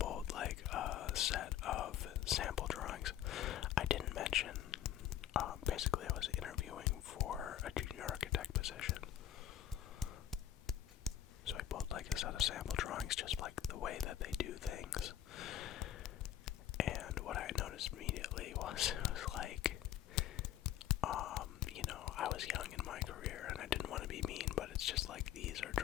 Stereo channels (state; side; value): quieter; right; 11.3 dB